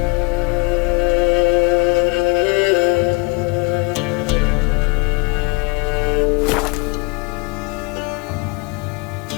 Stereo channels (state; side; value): quieter; right; 26.8 dB